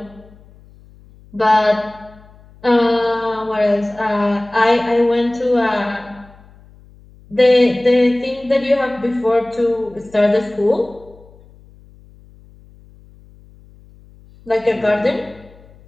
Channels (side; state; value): left; noise; hum, 25 dB below the sound